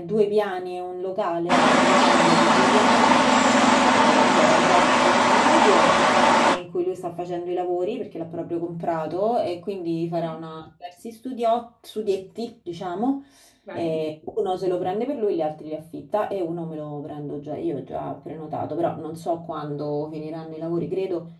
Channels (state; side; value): identical; both; correlation 1.00